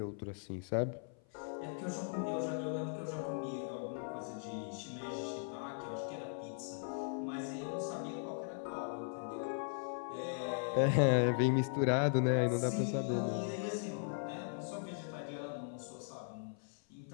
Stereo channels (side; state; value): right; silent; 52 dB below the other